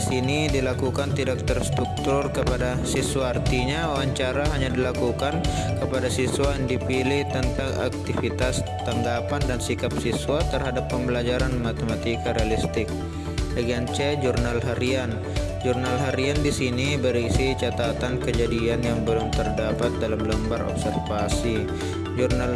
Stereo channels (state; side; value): identical; both; correlation 1.00